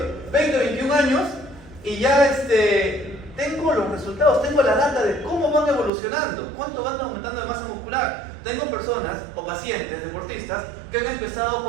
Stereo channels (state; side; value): drops out; left; at 5.9 s